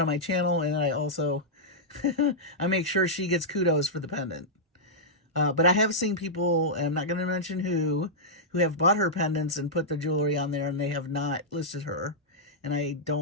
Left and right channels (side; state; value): both; normal; correlation -0.10